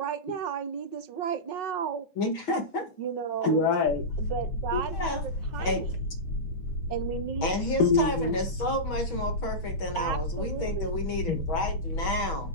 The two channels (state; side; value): late; right; 6.2 ms